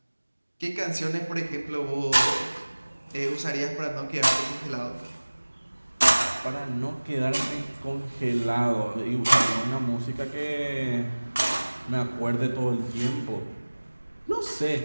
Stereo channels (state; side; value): inverted; both; correlation -1.00